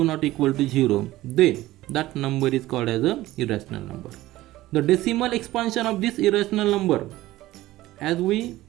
not equal to 0, then that number is called as a irrational number. The decimal expansion of this irrational number, as we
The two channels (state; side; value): quieter; left; 16.6 dB